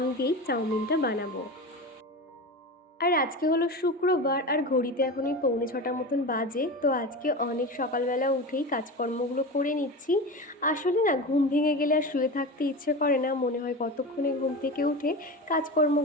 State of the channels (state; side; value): normal; both; correlation 0.26